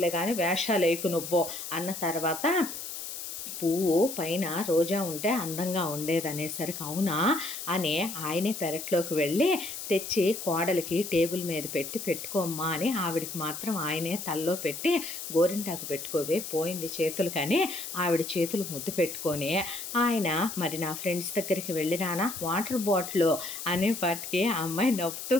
కానీ వేషాలేకు నువ్వు" అన్న తర్వాత, పువ్వు పైన రోజా ఉంటే అందంగా ఉండేదనేసరికి, "అవునా" అని ఆయనే పెరట్లోకి వెళ్ళి తెచ్చి కోడలికి టేబుల్ మీద పెట్టి, "పెట్టుకోమ్మా" అని ఆవిడికి మాత్రం ఆయనే తల్లో పెట్టి, "గోరింటాకు పెట్టుకోవే పోయింది చేతులు" కానీ ఆవిడ చేతులు ముద్దు పెట్టుకొని ఆయన, "మరి నా ఫ్రెండ్స్ దగ్గరికి వెళ్ళిరానా వాటర్ బాటిల్" అనేపాటికి ఆ అమ్మాయి నవ్వుతూ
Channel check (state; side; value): noise; left; hiss, 8 dB below the sound